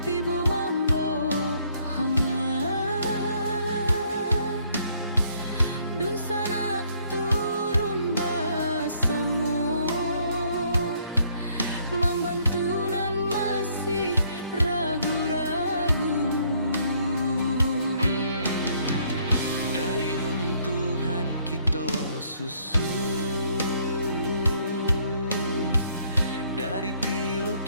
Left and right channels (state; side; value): inverted; both; correlation -0.66